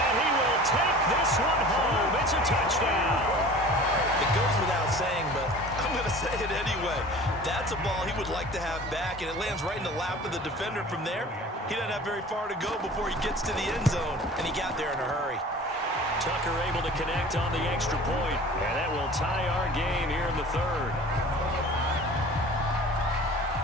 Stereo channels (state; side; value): normal; both; correlation 0.42